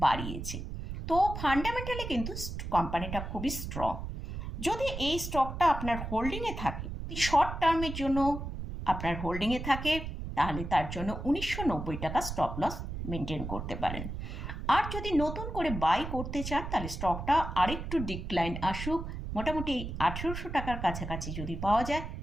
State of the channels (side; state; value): right; noise; rumble, 6 dB below the sound